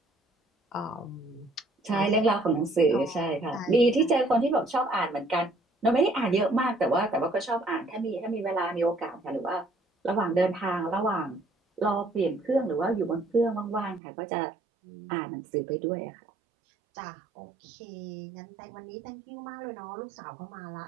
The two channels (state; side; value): drops out; left; at 14.0 s